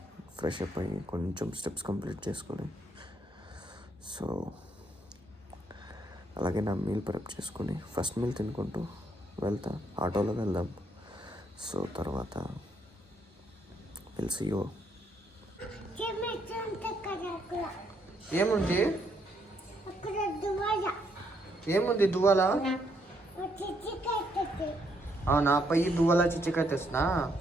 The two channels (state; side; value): normal; both; correlation 0.73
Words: ఫ్రెష్ అప్ అయ్యి కొంచెం స్టెప్స్ కంప్లీట్ చేసుకొని, సో అలాగే నా మీల్ ప్రెప్ చేసుకొని ఫస్ట్ మీల్ తినుకుంటూ వెళ్తా. ఆటోలో వెళ్దాం. సో తర్వాత సీ యూ. ఏముంది ఏముంది దువ్వాలా? అవునా, పయ్యి దువ్వాలా చిచ్చికాయ తెస్తున్నా.